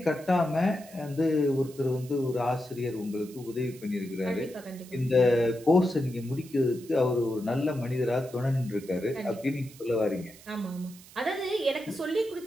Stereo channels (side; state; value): right; noise; hiss, 21 dB below the sound